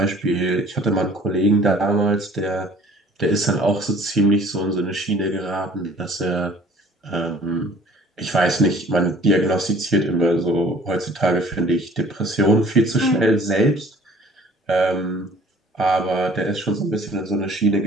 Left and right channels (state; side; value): normal; both; correlation 0.52